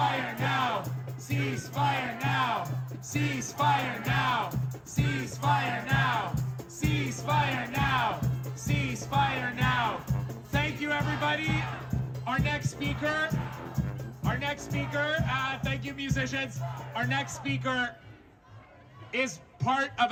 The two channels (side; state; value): both; identical; correlation 1.00